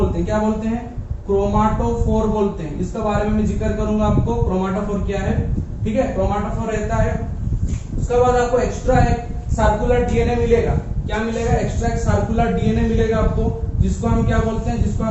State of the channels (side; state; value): both; identical; correlation 1.00